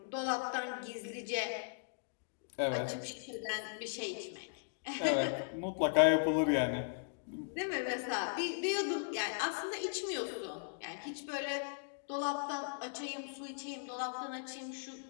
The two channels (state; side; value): silent; right; digital silence